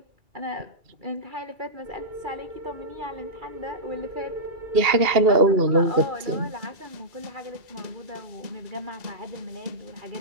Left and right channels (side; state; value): left; late; 2.3 ms